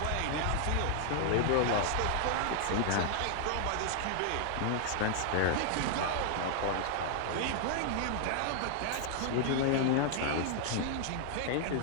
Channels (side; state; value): both; different; correlation 0.00